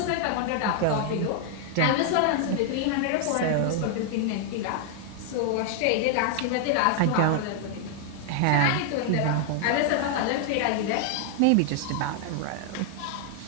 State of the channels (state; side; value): different; both; correlation 0.00